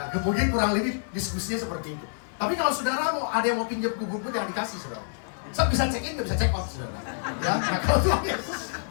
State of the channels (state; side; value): silent; right; 60 dB below the other